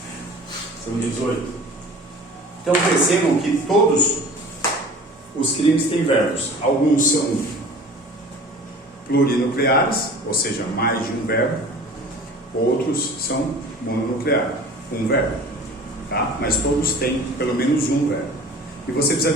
São 18. Então percebam que todos os crimes têm verbos. Alguns são plurinucleares, ou seja, mais de um verbo. Outros são mononucleares, um verbo. Tá? Mas todos têm pelo menos um verbo. E você precisa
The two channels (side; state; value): both; normal; correlation 0.43